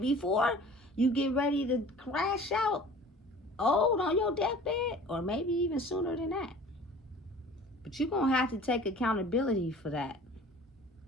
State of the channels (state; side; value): normal; both; correlation 0.45